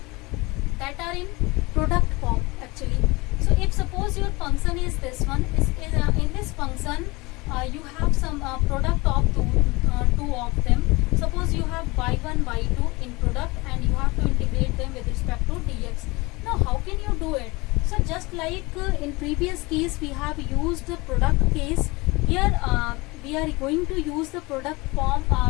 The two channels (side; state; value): right; quieter; 23.9 dB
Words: that are in product form actually. So if suppose your function is this one, in this function you have some product of two of them. Suppose you have y1, y2 in product, and you have to integrate them with respect to dx. Now how can you do it? So just like in previous case we have used the product case, here we are going to use the product form